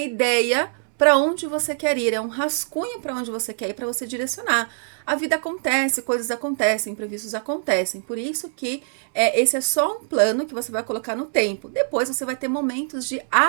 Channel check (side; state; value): left; silent; digital silence